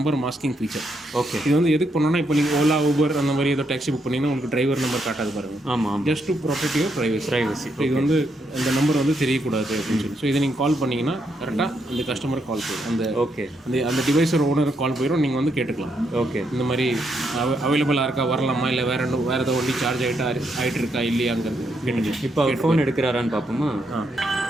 மாஸ்கிங் ஃபீச்சர். ஓகே, இது வந்து எதுக்கு பண்ணோன்னா இப்போ நீங்கள் ஓலா ஊபர் அந்த மாதிரி ஏதோ டாக்ஸி புக் பண்ணிங்கன்னா உங்களுக்கு டிரைவர் நம்பர் காட்டாது பாருங்க. ஆமாம், just to protect your privacy. இது வந்து இந்த நம்பர் வந்து தெரியக்கூடாது அப்படின்னு சொல்லி. ஸோ இதை நீங்கள் கால் பண்ணிங்கன்னா கரெக்டாக அந்த கஸ்டமருக்கு கால் போயிடும், அந்த ஓகே அந்த டிவைஸோட ஓனருக்கு கால் போயிடும். நீங்கள் வந்து கேட்டுக்கலாம், ஓகே இந்த மாதிரி அவைலபிளாக இருக்கா, வரலாமா, இல்லை வேறு ஏதோ வண்டி சார்ஜ் ஆகிட்டு இருக்கா இல்லையாங்கிறது கேட்டுக்கலாம். இப்போ அவர் ஃபோன் எடுக்கிறாரான்னு பார்ப்போமா?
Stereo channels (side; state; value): both; normal; correlation 0.78